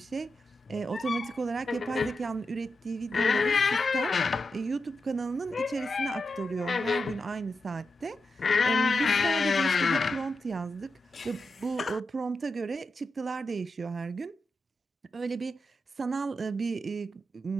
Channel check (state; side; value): normal; both; correlation 0.88